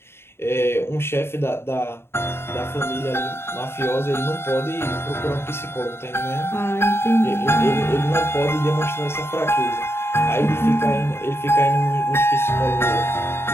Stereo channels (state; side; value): late; right; 0.12 ms